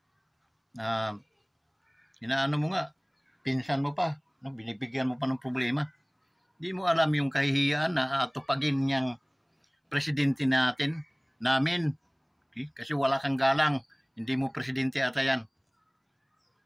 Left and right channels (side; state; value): both; identical; correlation 1.00